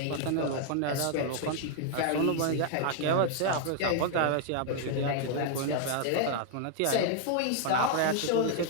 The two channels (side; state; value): both; different; correlation 0.00